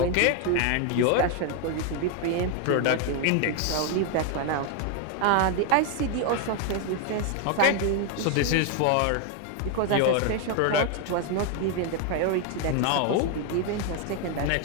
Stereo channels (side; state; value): both; different; correlation 0.01